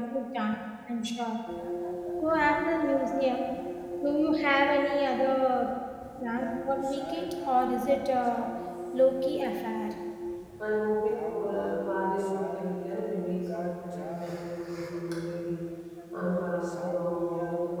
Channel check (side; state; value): both; identical; correlation 1.00